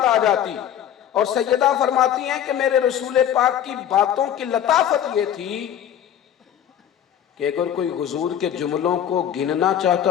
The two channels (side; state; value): right; quieter; 10.1 dB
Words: آ جاتی۔ اور سیدہ فرماتی ہیں کہ میرے رسول پاک کی باتوں کی لطافت یہ تھی کہ اگر کوئی حضور کے جملوں کو گننا